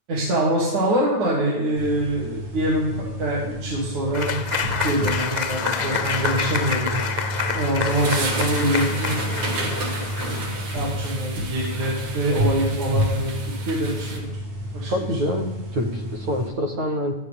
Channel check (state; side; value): late; left; 9.2 ms